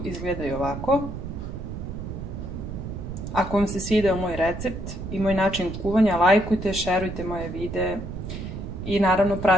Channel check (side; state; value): right; noise; rumble, 7 dB below the sound